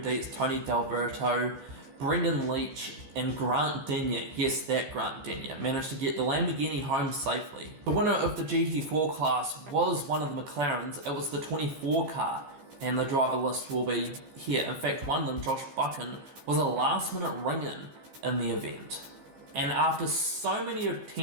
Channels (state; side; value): late; left; 15 ms